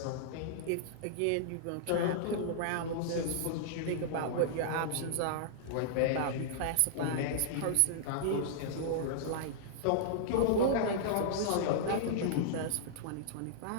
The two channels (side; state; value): both; different; correlation -0.02